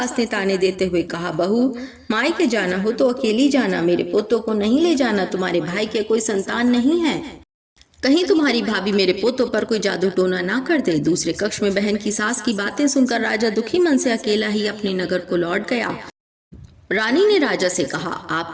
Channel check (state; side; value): identical; both; correlation 1.00